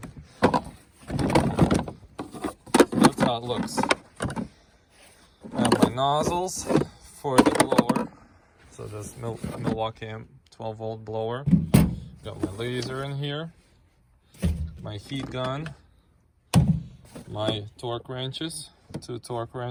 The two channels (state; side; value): identical; both; correlation 1.00